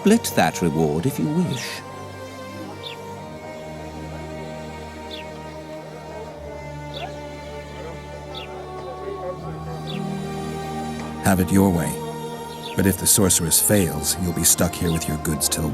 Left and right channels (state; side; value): identical; both; correlation 1.00